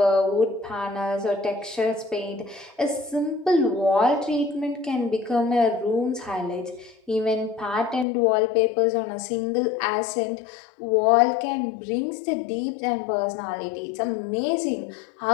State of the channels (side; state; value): right; drops out; at 8.1 s